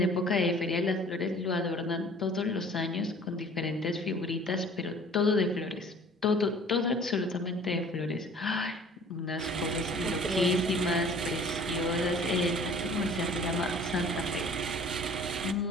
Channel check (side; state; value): both; normal; correlation 0.49